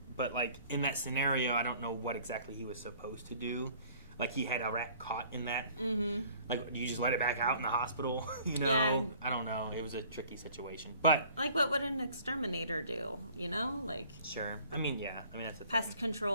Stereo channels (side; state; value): both; inverted; correlation -0.53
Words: but like in that scenario, I don't know what exactly he was supposed to do. Like he had a rat caught in that. Mm-hmm. Like, do you just let it back out in the hospital? You know, yeah. I don't know. It was a tricky situation, but like, what would an exterminator do? You know, like sure. I mean, yeah. I mean, that's a pest